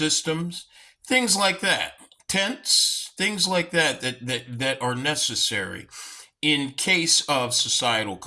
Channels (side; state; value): both; identical; correlation 1.00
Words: things like that. Tents, things like that are necessary in case of societal